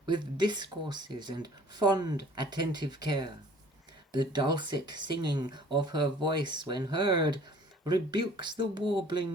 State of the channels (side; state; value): both; normal; correlation 0.51